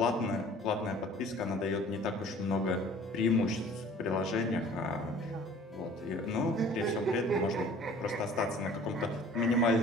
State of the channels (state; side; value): normal; both; correlation 0.49